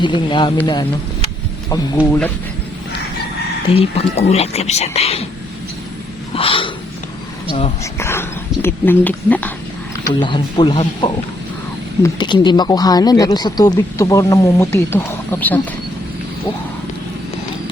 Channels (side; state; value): both; normal; correlation 0.72